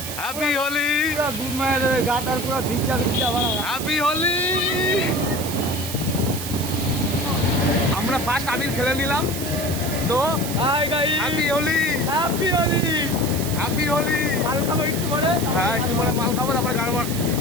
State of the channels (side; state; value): right; noise; hiss, 7 dB below the sound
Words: হ্যাপি হোলি। গুড মায়ের গাটার পুরো ভিজা ভিজা বাড়া। হ্যাপি হোলি। আমরা ফার্স্ট আবির খেলে নিলাম। তো hi guys, happy Holi. Happy Holi. Happy Holi. মাল খাবো একটু পরে। হ্যাঁ, একটু পরে মাল খাবো, তারপরে গান।